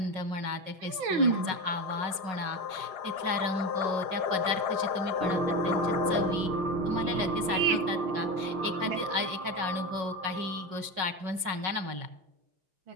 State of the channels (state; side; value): late; left; 5.4 ms